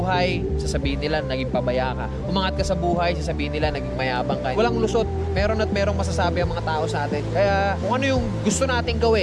sasabihin nila naging pabaya ka. Umangat ka sa buhay, sasabihin nila naging mayabang ka. Walang lusot, meron at merong masasabi ang mga tao sa atin. Kaya kung ano yung gusto nating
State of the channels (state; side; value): identical; both; correlation 1.00